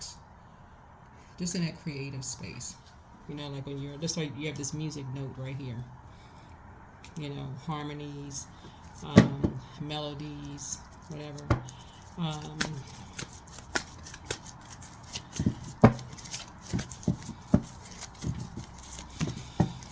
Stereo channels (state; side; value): identical; both; correlation 1.00